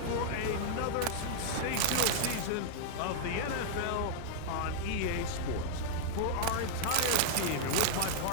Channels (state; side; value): different; both; correlation 0.00